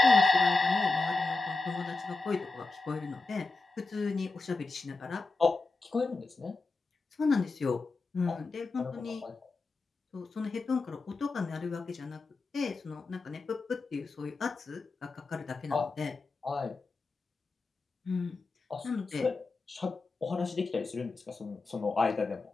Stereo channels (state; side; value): quieter; right; 3.7 dB